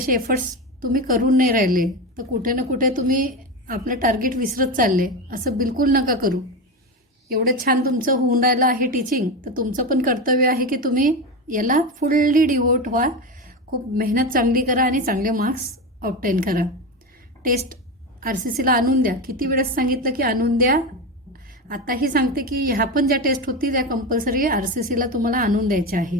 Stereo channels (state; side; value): normal; both; correlation 0.19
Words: एफर्ट्स तुम्ही करून नाही राहिले तर कुठे ना कुठे तुम्ही आपलं टार्गेट विसरत चालले. असं बिलकुल नका करू. एवढं छान तुमचं होऊन राहिलं आहे टीचिंग, तर तुमचं पण कर्तव्य आहे की तुम्ही याला फुल्ली डिवोट व्हा, खूप मेहनत चांगली करा आणि चांगले मार्क्स ऑब्टेन करा. टेस्ट RCCला आणून द्या. किती वेळेस सांगितलं की आणून द्या. आताही सांगते की ह्या पण ज्या टेस्ट होतील त्या कंपल्सरी RCCला तुम्हाला आणून द्यायच्या